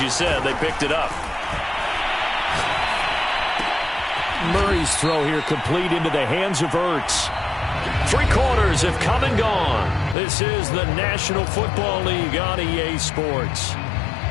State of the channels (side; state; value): right; drops out; at 10.2 s